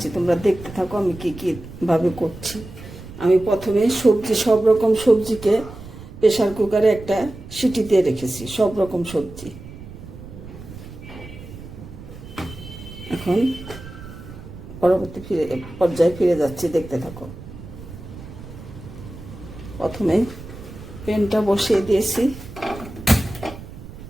তোমরা দেখতে থাকো আমি কীভাবে করছি। আমি প্রথমে সব রকম সবজিকে প্রেশার কুকারে একটা সিটি দিয়ে রেখেছি, সব রকম সবজি। এখন পরবর্তী পর্যায়ে ফিরে যাচ্ছি, দেখতে থাকো। প্রথমে প্যানটা বসিয়ে দিয়েছি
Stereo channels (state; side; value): noise; right; rumble, 14 dB below the sound